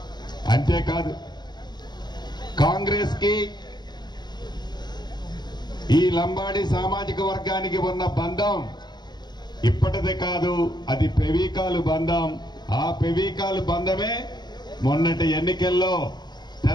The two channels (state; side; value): late; right; 0.21 ms